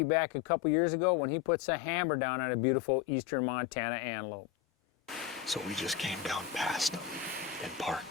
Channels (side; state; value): right; quieter; 9.9 dB